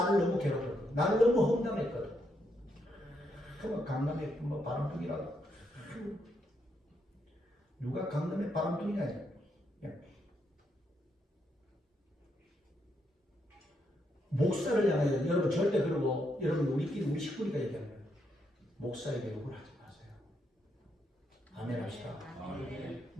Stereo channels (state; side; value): normal; both; correlation 0.78